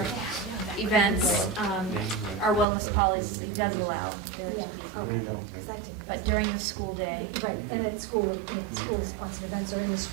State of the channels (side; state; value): left; drops out; at 2.7 s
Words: events, our wellness policy does allow there to Yeah, be. okay. Exactly. But during the school day, Right, and at school, if school sponsored events are in the